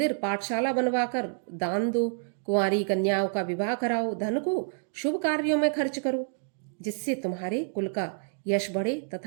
पाठशाला बनवाकर दान दो, कुंवारी कन्याओं का विवाह कराओ, धन को शुभ कार्यों में खर्च करो, जिससे तुम्हारे कुल का यश बढ़े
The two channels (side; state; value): left; silent; digital silence